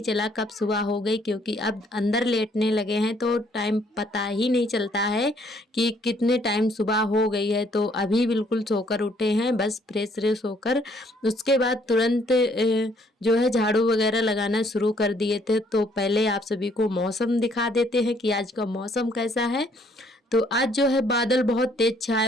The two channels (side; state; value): both; normal; correlation 0.65